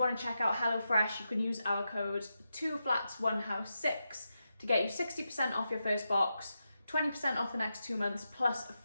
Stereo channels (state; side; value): inverted; both; correlation -0.88